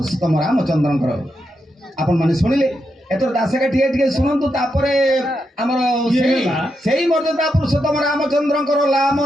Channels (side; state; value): both; normal; correlation 0.84